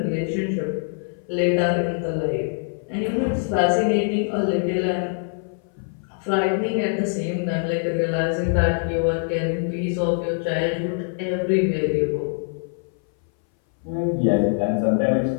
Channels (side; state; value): right; silent; 60 dB below the other